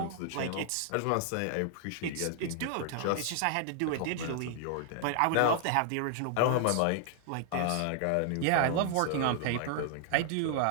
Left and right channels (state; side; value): different; both; correlation 0.00